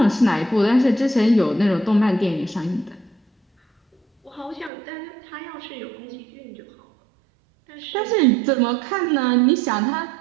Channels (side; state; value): left; drops out; at 4.7 s